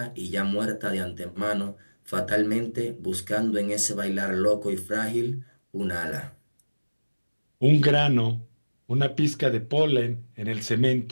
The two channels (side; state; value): both; inverted; correlation -1.00